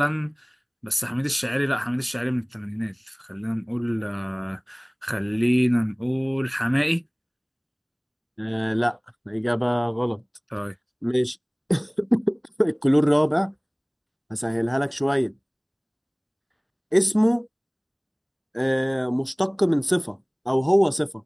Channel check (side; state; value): both; identical; correlation 1.00